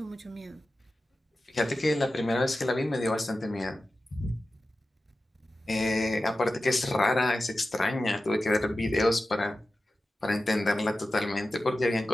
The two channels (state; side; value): normal; both; correlation 0.94